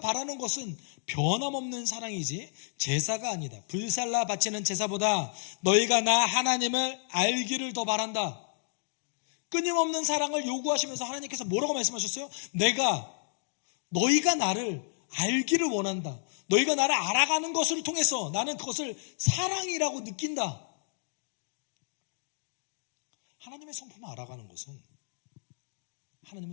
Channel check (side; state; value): right; silent; digital silence